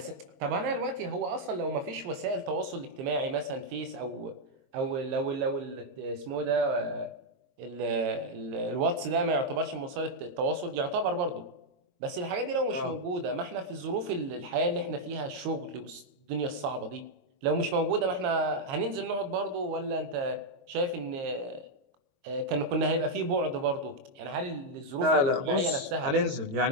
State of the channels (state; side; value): late; left; 22 ms